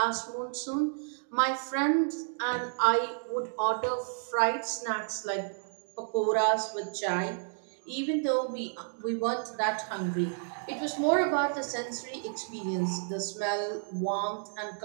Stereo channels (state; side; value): silent; left; digital silence